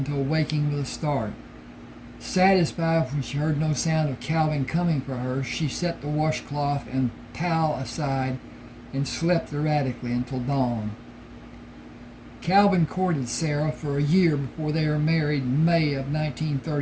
waking with a start. Satisfied when she heard no sound of Calvin coming for her, she set the washcloth and towel aside and slept erratically until dawn. Calvin courted Sarah for a year before they were married in May of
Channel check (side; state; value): both; identical; correlation 1.00